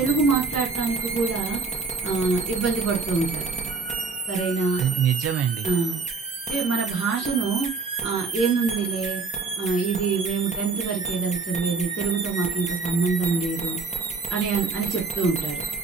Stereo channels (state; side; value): quieter; left; 4.4 dB